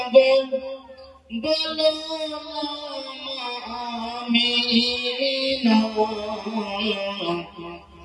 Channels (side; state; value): both; identical; correlation 1.00